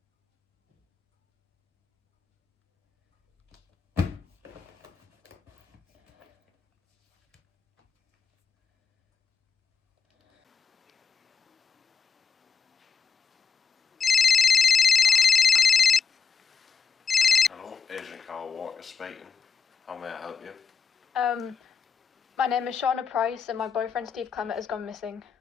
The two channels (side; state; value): right; quieter; 5.9 dB